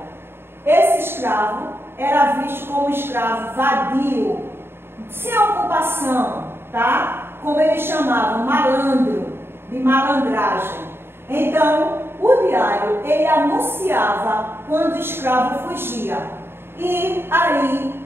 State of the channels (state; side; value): late; left; 0.11 ms